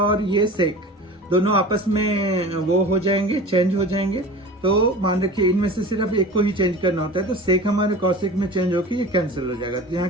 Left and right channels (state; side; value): normal; both; correlation 0.36